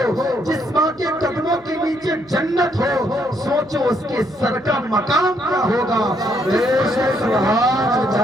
جس ماں کے قدموں کے نیچے جنت ہو، سوچو اس کے سر کا مقام کیا ہوگا۔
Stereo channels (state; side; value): noise; right; hum, 29 dB below the sound